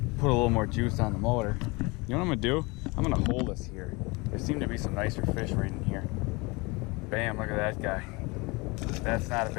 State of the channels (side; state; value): right; quieter; 25.9 dB